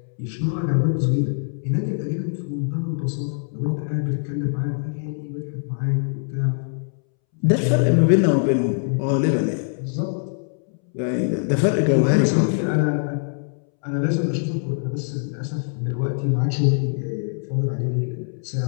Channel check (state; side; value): silent; right; 63 dB below the other